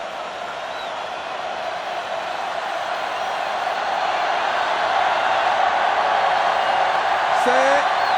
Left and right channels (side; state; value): both; identical; correlation 1.00